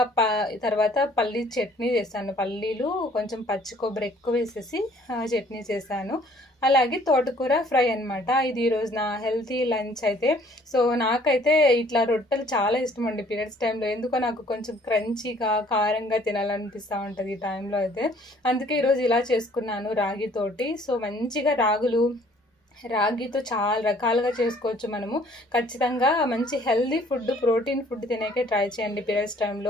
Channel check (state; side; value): normal; both; correlation 0.58